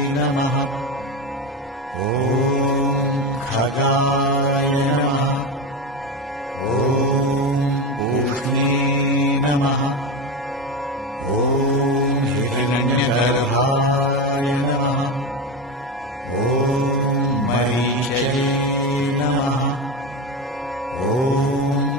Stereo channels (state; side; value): normal; both; correlation 0.18